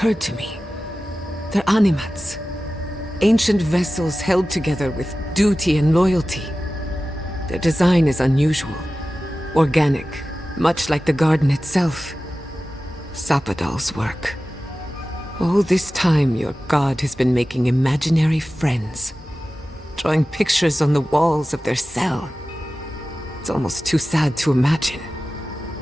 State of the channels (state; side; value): normal; both; correlation 0.95